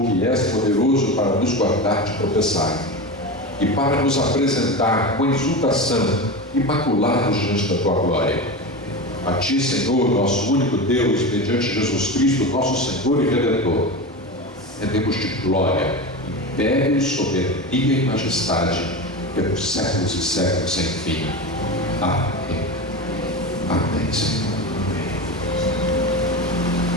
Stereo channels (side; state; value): both; normal; correlation 0.24